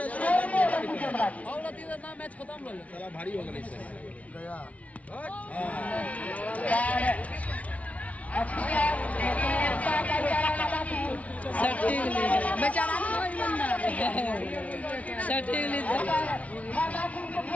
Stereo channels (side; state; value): right; late; 0.067 ms